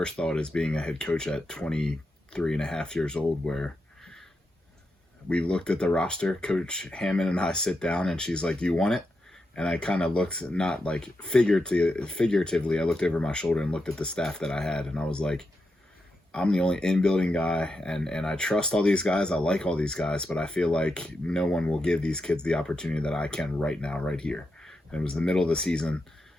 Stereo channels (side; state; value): both; normal; correlation 0.86